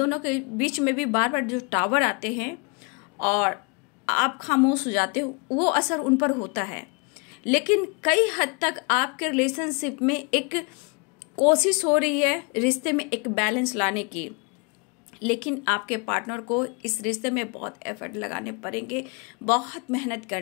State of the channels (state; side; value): quieter; right; 32.1 dB